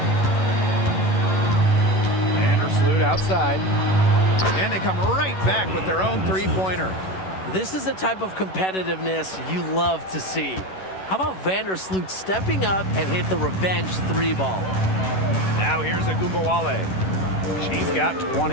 Vandersloot outside. And they come right back with their own 3-pointer. This is the type of competitiveness you love to see. How about Vandersloot stepping up and hit the revenge 3 ball? Now here's Wnba. She's got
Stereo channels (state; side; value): late; right; 11 ms